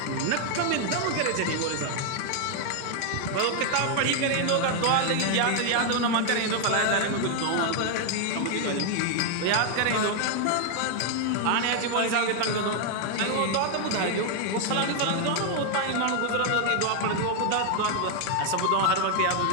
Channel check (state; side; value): different; both; correlation 0.00